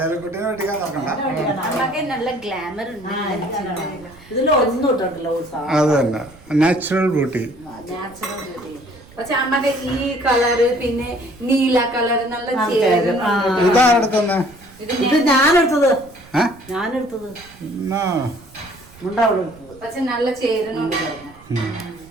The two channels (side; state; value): right; noise; rumble, 23 dB below the sound